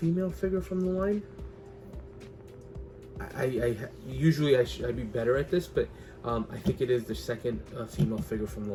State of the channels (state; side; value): identical; both; correlation 1.00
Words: figure from the line? Usually I'd be better at this, but I think it is the second female figure from the